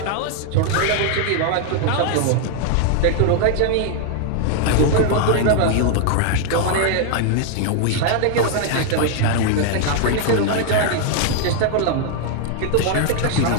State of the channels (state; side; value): different; both; correlation 0.00